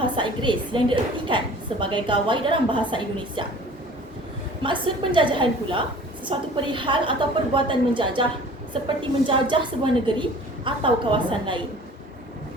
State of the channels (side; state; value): both; normal; correlation 0.47